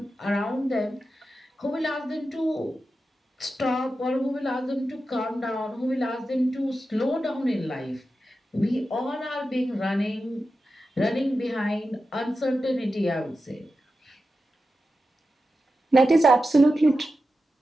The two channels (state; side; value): normal; both; correlation 0.91